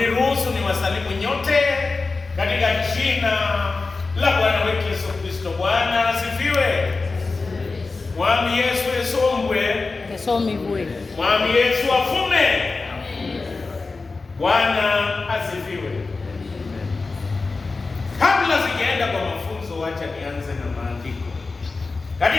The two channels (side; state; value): right; quieter; 3.9 dB